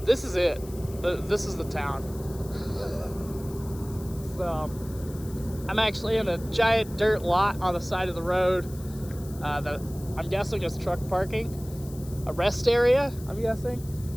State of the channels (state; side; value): noise; left; hiss, 19 dB below the sound